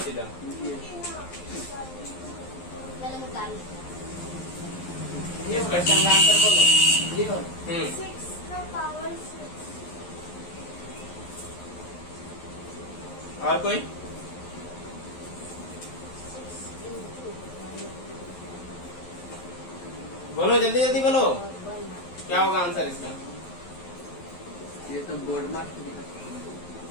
मैंने निकाल इस क्वेश्चन का आंसर बोलो। 6 का पावर 6। और कोई? बोलो जल्दी जल्दी बोलो, क्या होगा आंसर इसका? ये तो बोर्ड मार्क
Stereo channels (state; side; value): late; right; 11 ms